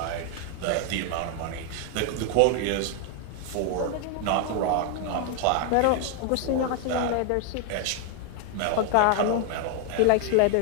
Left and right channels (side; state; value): both; different; correlation 0.00